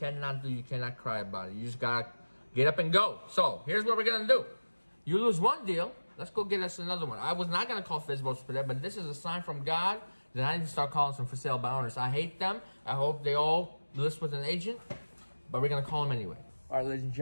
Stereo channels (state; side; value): inverted; both; correlation -1.00